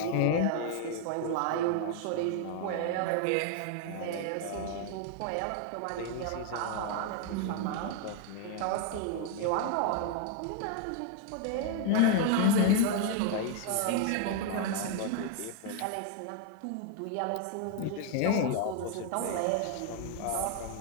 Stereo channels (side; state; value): both; different; correlation 0.00